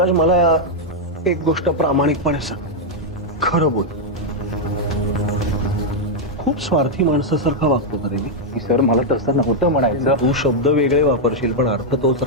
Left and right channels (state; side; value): normal; both; correlation -0.02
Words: मला एक गोष्ट प्रामाणिकपणे सांग, खरं बोल. खूप स्वार्थी माणसासारखा वागतो का रे मी? सर, मला तसं नव्हतं म्हणायचं. तू शब्द वेगळे वापरशील पण अर्थ तोच